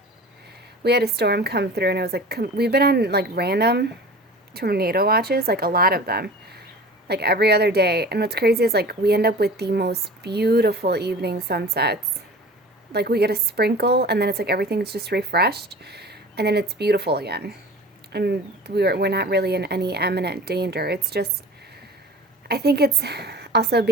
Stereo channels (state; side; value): normal; both; correlation 0.40